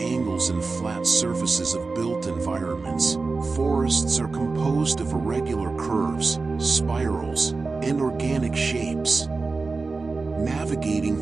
and flat surfaces of built environments, forests are composed of irregular curves, spirals, and organic shapes. Navigating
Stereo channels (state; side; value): quieter; left; 4.0 dB